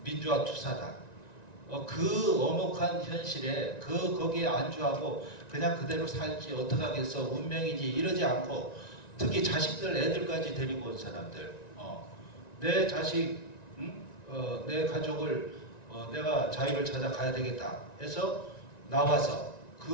민주화 투사다. 그 엄혹한 현실에 거기에 안주하고 그냥 그대로 살지 어떡하겠어 운명이지 이러지 않고 특히 자식들 애들까지 데리고 온 사람들 내 자식 내 가족을 내가 자유를 찾아가야 되겠다 해서 나와서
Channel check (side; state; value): right; late; 1.9 ms